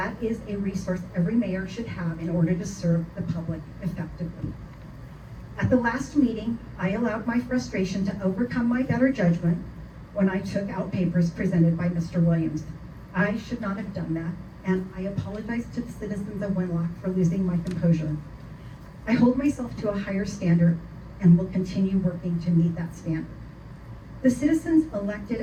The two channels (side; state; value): both; identical; correlation 1.00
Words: is a resource every mayor should have in order to serve the public effectively. At the last meeting, I allowed my frustration to overcome my better judgment when I took out papers presented by Mr. Williams. I should not have done that, and I apologize to the citizens of Winlock for losing my composure. I hold myself to a higher standard and will continue working to meet that standard. The citizens elected